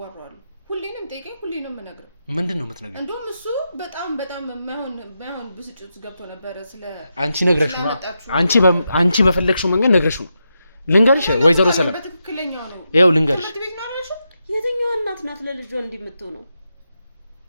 ሁሌንም ጠይቀኝ ሁሌንም ምነግረው ምንድነው የምትነግረው እንደውም እሱ በጣም ማይሆን ብስጭት ገብቶ ነበር ስለ አንቺ ነግረሽው አንቺ በፈለግሽው መንገድ ነግረሽው ነው ልንገርሽ ወይዘሮ ሰላም በትክክለኛው ነው ይኸው ልንገርሽ የትኛው እናት ናት ለልጇ እንዲምትው ነው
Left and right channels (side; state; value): both; inverted; correlation -0.86